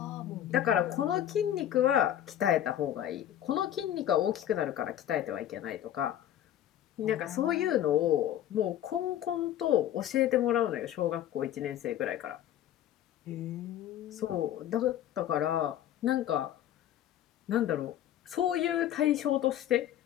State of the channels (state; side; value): quieter; right; 11.5 dB